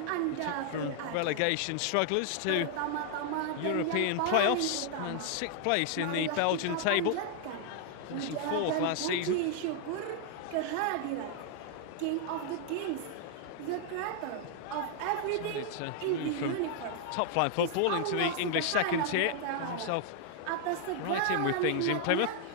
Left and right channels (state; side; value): different; both; correlation 0.00